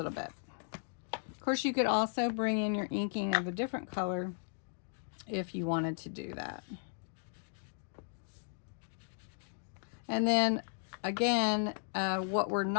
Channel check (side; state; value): right; silent; digital silence